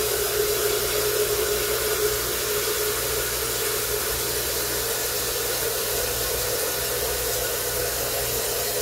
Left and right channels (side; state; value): both; identical; correlation 1.00